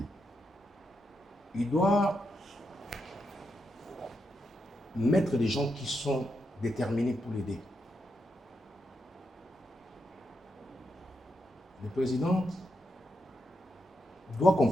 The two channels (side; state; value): both; normal; correlation 0.84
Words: Il doit mettre des gens qui sont déterminés pour l'aider. Le président doit